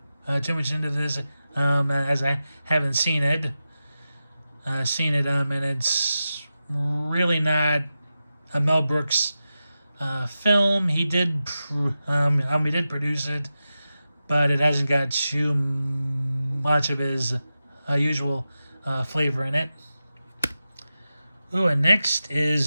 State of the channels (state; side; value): inverted; both; correlation -0.92